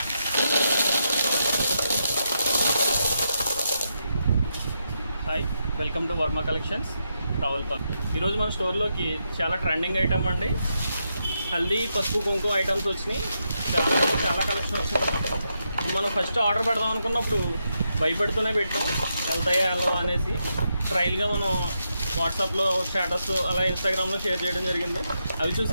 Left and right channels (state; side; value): inverted; both; correlation -0.83